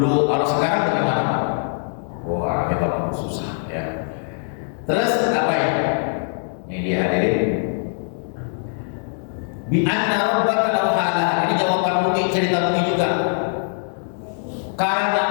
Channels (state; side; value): silent; right; digital silence